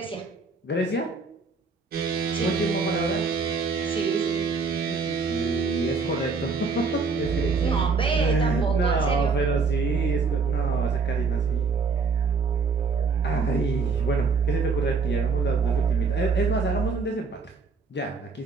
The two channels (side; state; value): left; quieter; 4.6 dB